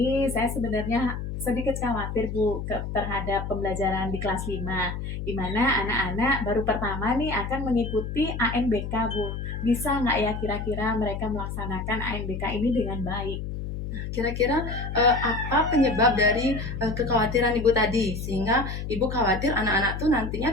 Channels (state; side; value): noise; left; hum, 5 dB below the sound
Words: saya sebenarnya sedikit khawatir Bu terhadap pembelajaran di kelas 5, di mana anak-anak baru pertama nih akan mengikuti ANBK Bu. Bisa nggak ya kira-kira mereka melaksanakan ANBK ini dengan baik? Kira-kira apa penyebab dari kekhawatiran Ibu tadi, sehingga Ibu khawatir anak-anak tuh nantinya